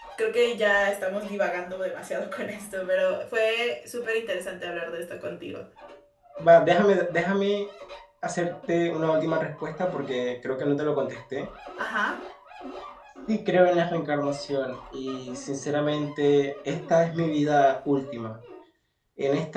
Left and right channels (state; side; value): identical; both; correlation 1.00